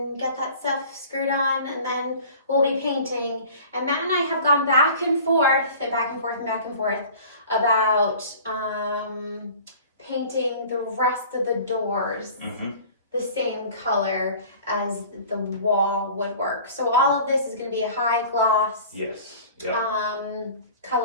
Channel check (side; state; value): both; inverted; correlation -0.44